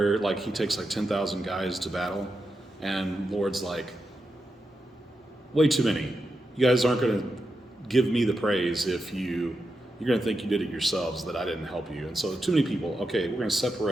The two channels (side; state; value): both; normal; correlation 0.88